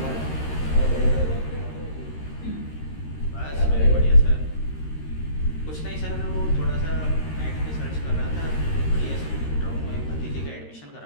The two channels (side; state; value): right; late; 13 ms